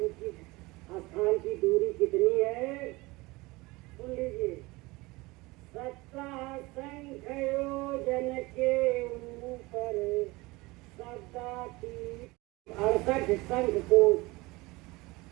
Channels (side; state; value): left; quieter; 22.4 dB